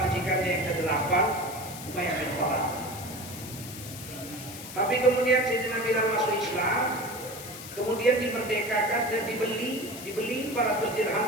majikannya yang ke-8, Umayyah bin Khalaf. Tapi kemudian Sayyidina Bilal masuk Islam, kemudian dimerdekakan dan dibeli 400 dirham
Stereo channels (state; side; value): noise; left; hiss, 12 dB below the sound